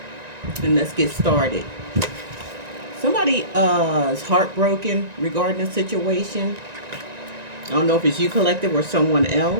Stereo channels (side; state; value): left; late; 1.9 ms